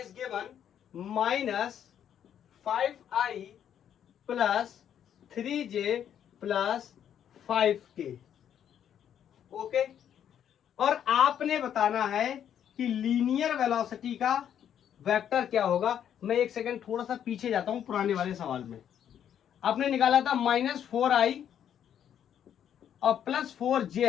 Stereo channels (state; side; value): quieter; right; 9.5 dB